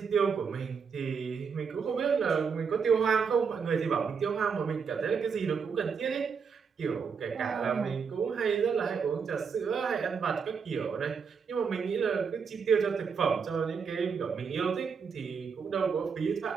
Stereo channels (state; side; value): quieter; left; 6.0 dB